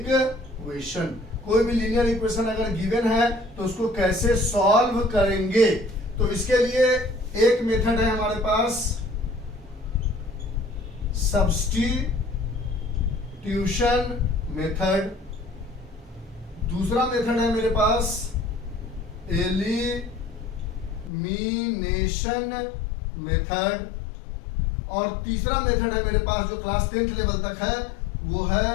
कोई भी लीनियर इक्वेशन अगर गिवन है तो उसको कैसे सॉल्व करेंगे। तो इसके लिए एक मेथड है हमारे पास, सब्स्टिट्यूशन मेथड। दूसरा मेथड है मेरे पास एलिमिनेशन मेथड, और तीसरा मेथड है मेरे पास जो क्लास 10th लेवल तक है, वो है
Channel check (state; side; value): drops out; right; at 21.1 s